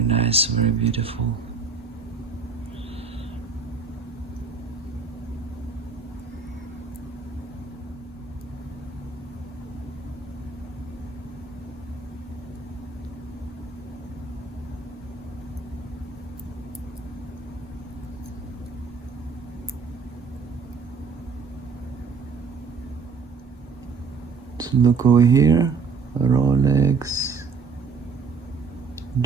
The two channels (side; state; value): left; quieter; 4.9 dB